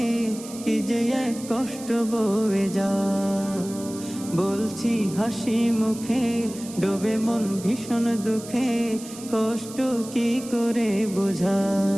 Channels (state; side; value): noise; right; hiss, 15 dB below the sound